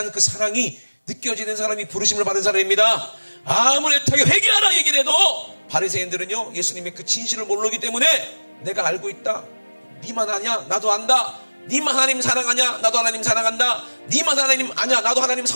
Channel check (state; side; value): inverted; both; correlation -1.00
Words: 그 사랑이 느껴지는 사람이 부르심을 받은 사람입니다. 아무리 애타게 회개하라 얘기를 해도 바리새인들은요 예수님의 그 진실을 모르기 때문에 내가 알고 있다. 니만 아냐? 나도 안다. 니만 하나님 사랑하냐? 나도 하나님 사랑한다. 니만 하나님 아냐? 나도 하나님